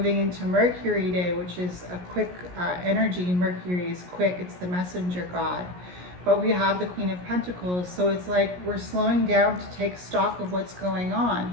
into Mercury Day, which is a quick energy, Mercury is quick. It's the messenger god. But we have the Queen of Pentacles, so it's like we're slowing down to take stock of what's going on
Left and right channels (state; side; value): late; left; 17 ms